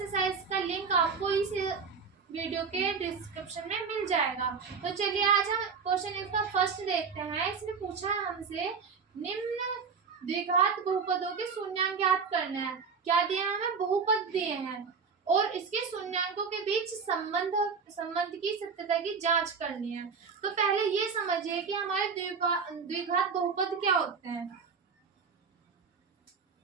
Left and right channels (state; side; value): quieter; left; 5.6 dB